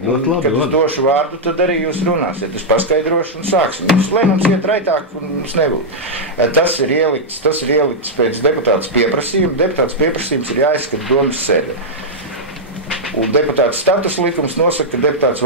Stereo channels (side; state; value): both; normal; correlation -0.05